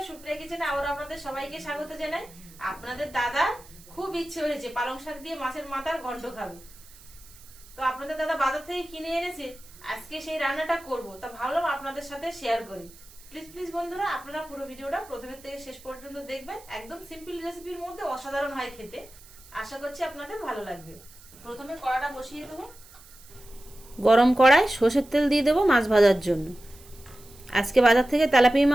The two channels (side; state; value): right; noise; hiss, 22 dB below the sound